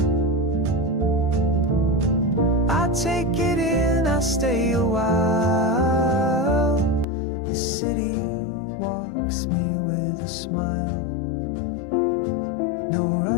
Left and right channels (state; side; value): drops out; right; at 7.1 s